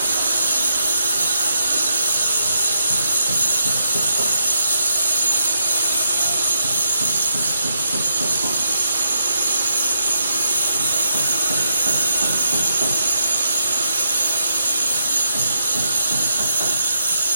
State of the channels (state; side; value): inverted; both; correlation -0.79